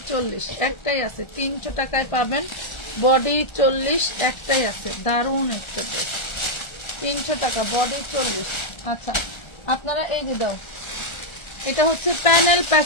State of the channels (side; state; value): right; late; 1.3 ms